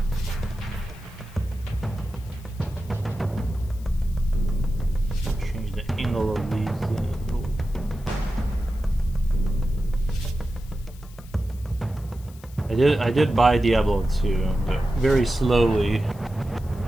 Change the angle of these. I did buy Diablo 2, but very slowly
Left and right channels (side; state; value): left; noise; hiss, 24 dB below the sound